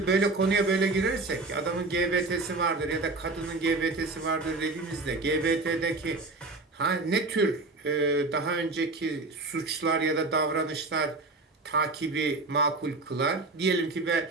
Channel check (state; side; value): quieter; left; 3.3 dB